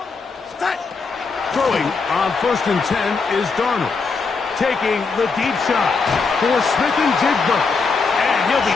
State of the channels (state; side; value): quieter; right; 4.6 dB